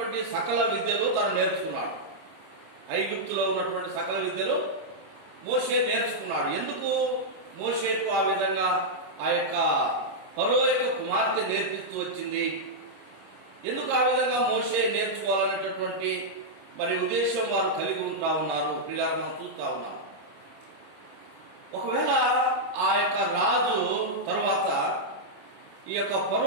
సకల విద్యలు తను నేర్చుకున్నాడు. ఐగుప్తులో ఉన్నటువంటి సకల విద్యలు మోషే నేర్చుకున్నాడు. ఎందుకు మోషేకు ఆ విధంగా ఆ యొక్క ఫరో యొక్క కుమార్తె నేర్పిస్తూ వచ్చింది? ఎందుకు ఆ విధంగా మోషే నేర్చుకోవాలనేటటువంటి మరి ఉద్దేశం వారు కలిగి ఉంటా ఉన్నారు. పిల్లలు మనం చూస్తా ఉన్నాం. ఒకవేళ ఆ యొక్క రాజు తర్వాత ఈ యొక్క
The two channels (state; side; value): late; left; 25 ms